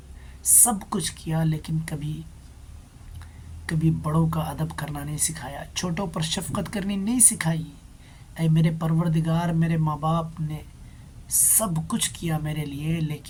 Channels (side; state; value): both; identical; correlation 1.00